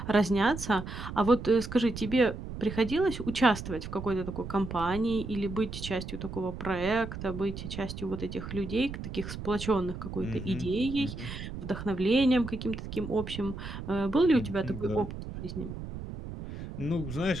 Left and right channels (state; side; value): noise; right; rumble, 9 dB below the sound